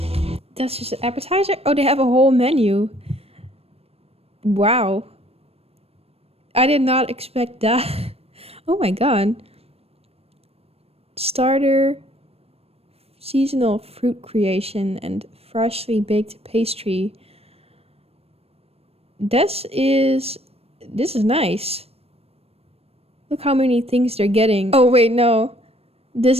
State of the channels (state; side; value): late; left; 0.29 ms